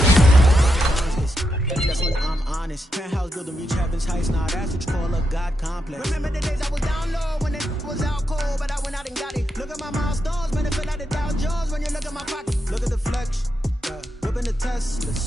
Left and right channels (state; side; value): normal; both; correlation 0.84